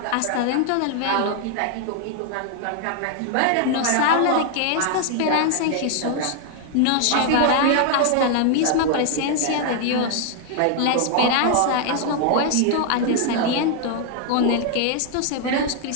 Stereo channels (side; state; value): both; different; correlation 0.00